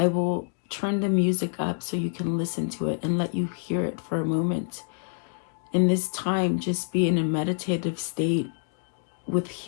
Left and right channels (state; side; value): silent; right; digital silence